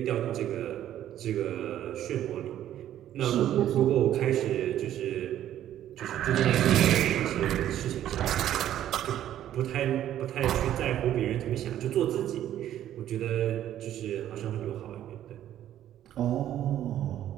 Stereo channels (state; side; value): quieter; left; 11.8 dB